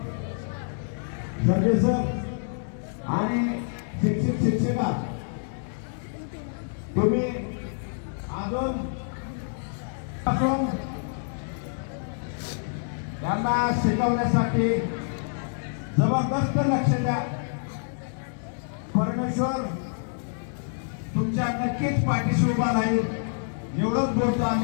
सरजे सर आणि शिक्षिका, तुम्ही अजून यांना शिकवण्यासाठी जबरदस्त लक्ष द्या। परमेश्वर तुमच्या नक्कीच पाठीशी उभा राहील, एवढंच बोलतो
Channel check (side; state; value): right; silent; digital silence